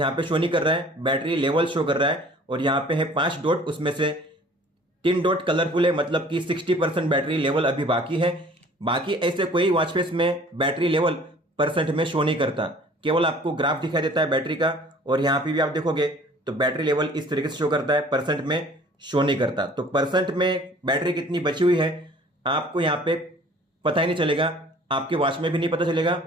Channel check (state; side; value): normal; both; correlation 0.51